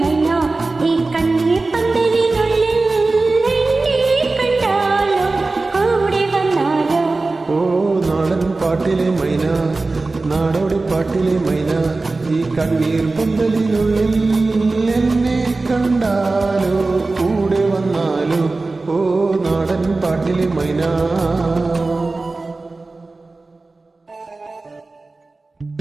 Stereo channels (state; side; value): quieter; left; 3.4 dB